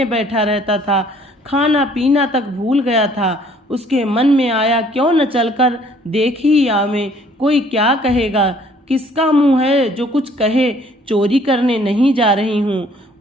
बैठा रहता था, खाना पीना तक भूल गया था। उसके मन में आया, क्यों न चलकर देख ही आवें, कोई क्या कहेगा? किसका मुंह है जो कुछ कहे? चोरी करने नहीं जा रही हूँ,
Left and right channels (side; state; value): both; normal; correlation 0.59